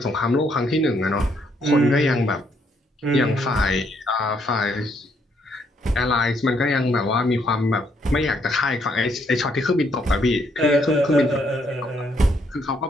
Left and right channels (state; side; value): normal; both; correlation 0.72